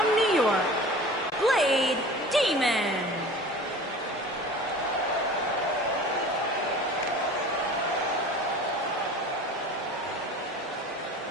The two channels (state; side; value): normal; both; correlation 0.40